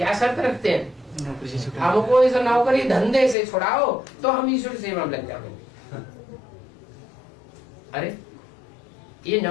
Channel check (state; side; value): drops out; right; at 3.4 s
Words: शर्त रखते हैं? हमको इस नौकरी धंधे से छुड़ाओ तो हम ईश्वर सेवा में लग जाएंगे। अरे ये